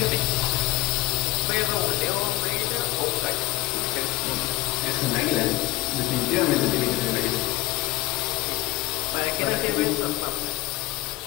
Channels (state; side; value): quieter; right; 18.1 dB